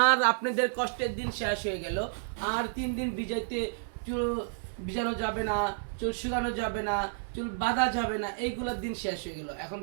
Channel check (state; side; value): silent; left; 57 dB below the other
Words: আর আপনাদের কষ্টের দিন শেষ হয়ে গেল। আর 3 দিন ভিজাইতে চুল ভিজানো যাবে না, চুল শুকানো যাবে না, চুল বাঁধা যাবে না, এইগুলোর দিন শেষ হয়ে গেল। এখন